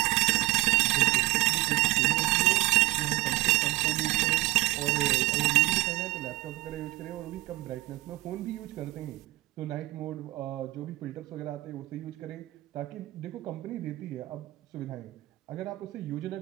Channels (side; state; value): left; quieter; 18.5 dB